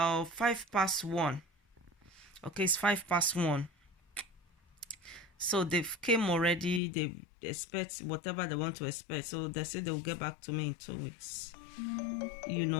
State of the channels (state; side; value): drops out; right; at 6.8 s